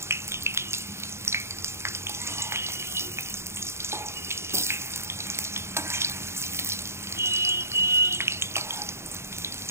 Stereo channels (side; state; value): left; late; 0.13 ms